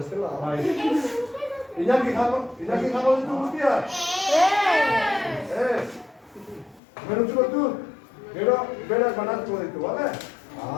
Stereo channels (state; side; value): drops out; right; at 6.8 s